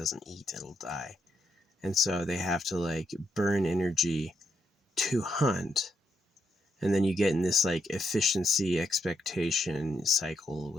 eat, it'll die. And so they have to like burn energy to hunt. And then you get in this like efficiency expectation cycle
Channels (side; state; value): both; normal; correlation 0.79